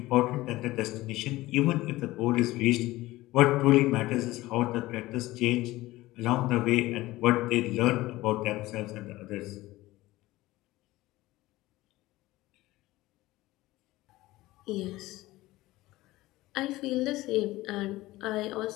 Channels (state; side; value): quieter; right; 18.1 dB